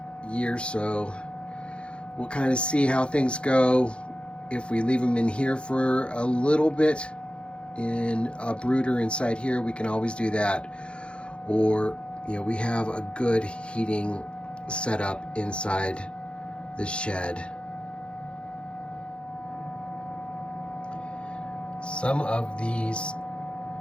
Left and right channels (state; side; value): late; right; 0.057 ms